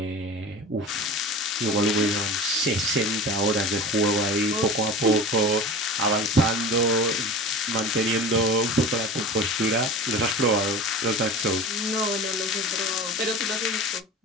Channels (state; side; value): normal; both; correlation 0.34